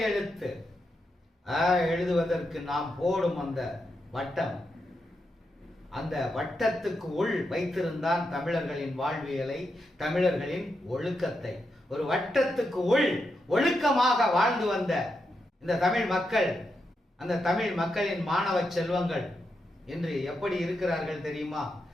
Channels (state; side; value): normal; both; correlation 0.85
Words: எழுத்து எழுதுவதற்கு நாம் போடும் அந்த வட்டம், அந்த வட்டத்துக்கு உள் வைத்திருந்தான் தமிழர்களின் வாழ்வியலை, தமிழர்களின் ஒழுக்கத்தை. ஒரு வட்டத்துக்கு உள் ஒழுக்கமாக வாழ்ந்து வந்த இந்த தமிழ் மக்கள், அந்த தமிழ் மக்களின் மாணவ செல்வங்கள் இன்று எப்படி இருக்கிறார்கள் தெரியுமா?